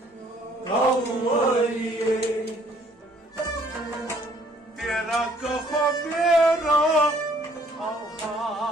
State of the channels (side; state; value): both; normal; correlation 0.62